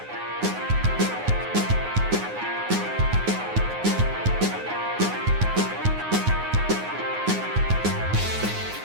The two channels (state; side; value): late; left; 9.6 ms